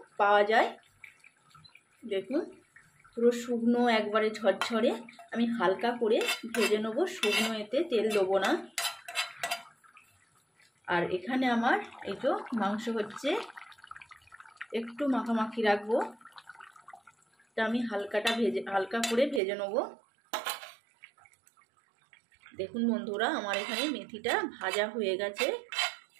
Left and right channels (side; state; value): left; drops out; at 19.4 s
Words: পাওয়া যায়। দেখুন পুরো শুকনো, একবারে ঝরঝরে আমি হালকা করে ভেজে নেবো, শুকনো, এতে তেল দেবো না। আর এখানে আমার এই তো মাংস হচ্ছে, একটু মাখামাখি রাখবো, তা আমি হালকা করে ভেজে নেবো। দেখুন বন্ধুরা, আমার এখানে মেথিটা ভাজা হয়ে গেছে।